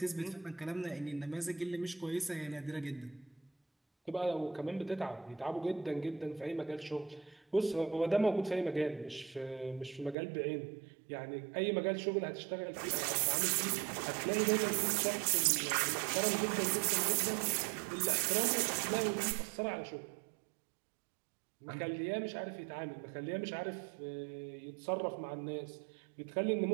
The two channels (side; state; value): left; drops out; at 10.2 s